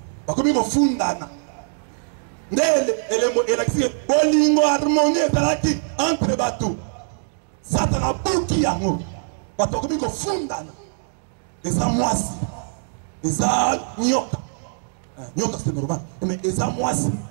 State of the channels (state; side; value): silent; left; digital silence